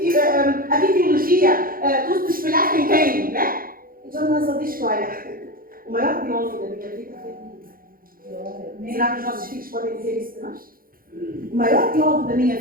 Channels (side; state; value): left; late; 0.42 ms